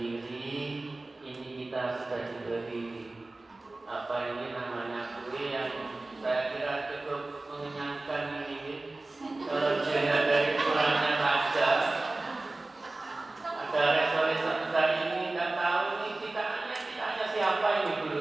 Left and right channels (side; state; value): left; quieter; 3.0 dB